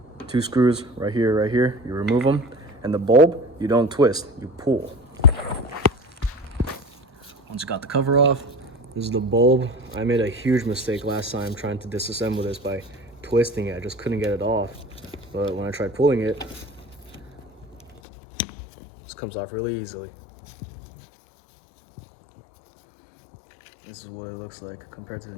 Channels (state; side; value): drops out; right; at 18.0 s